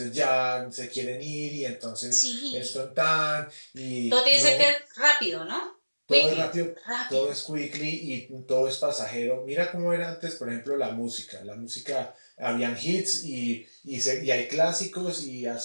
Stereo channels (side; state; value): both; inverted; correlation -1.00